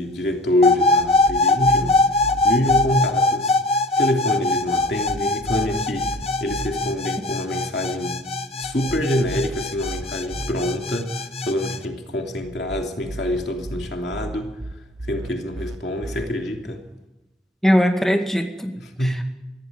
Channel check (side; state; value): both; normal; correlation 0.48